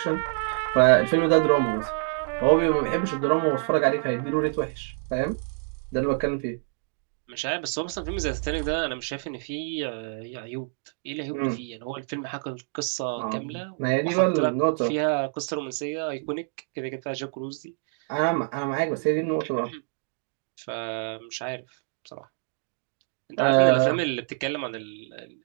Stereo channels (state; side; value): silent; left; digital silence